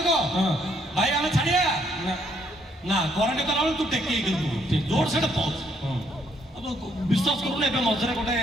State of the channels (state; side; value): normal; both; correlation 0.70